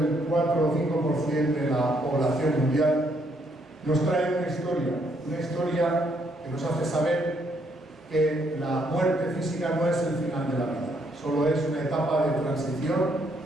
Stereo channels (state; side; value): normal; both; correlation 0.72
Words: 4 o 5% de la población mundial, nos traen una historia que nos hace saber que la muerte física no es el final de la vida, solo es una etapa de transición